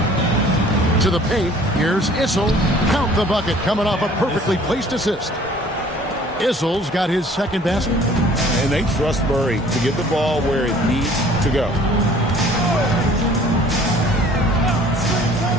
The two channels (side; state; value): both; normal; correlation 0.53